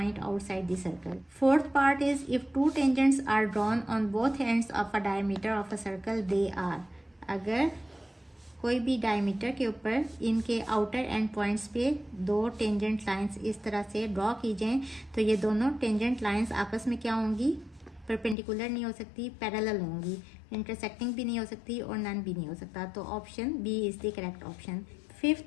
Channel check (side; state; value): right; drops out; at 18.4 s